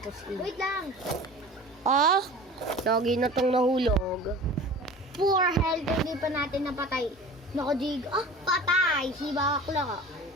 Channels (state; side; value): normal; both; correlation 0.39